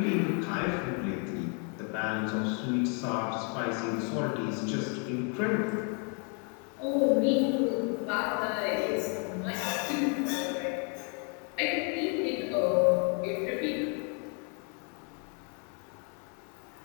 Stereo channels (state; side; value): quieter; right; 38.6 dB